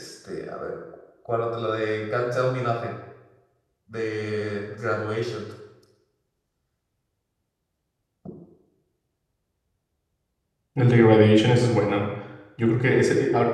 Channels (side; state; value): both; identical; correlation 1.00